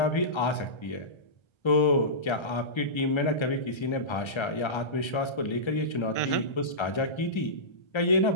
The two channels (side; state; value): right; late; 1.3 ms